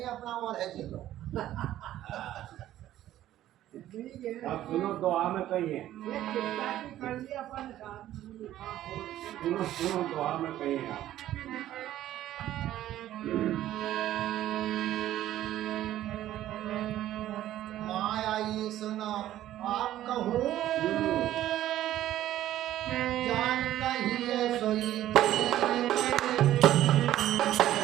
अपना और है चलो। आप सुनो दुआ में कहिए, सुनो दुआ में कहिए आप।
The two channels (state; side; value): quieter; left; 13.2 dB